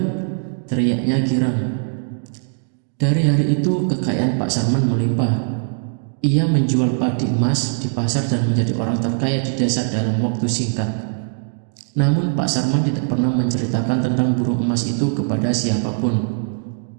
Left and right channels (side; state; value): left; silent; digital silence